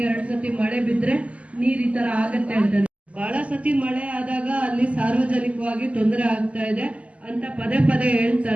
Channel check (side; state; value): left; late; 0.065 ms